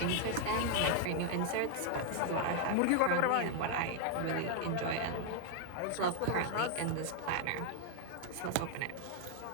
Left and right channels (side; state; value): both; different; correlation 0.00